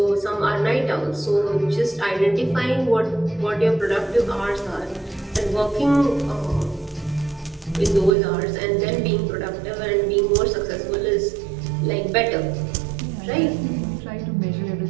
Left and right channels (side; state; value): left; drops out; at 8.1 s